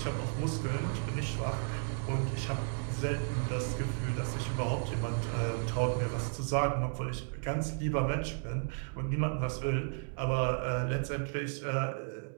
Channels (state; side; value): silent; left; digital silence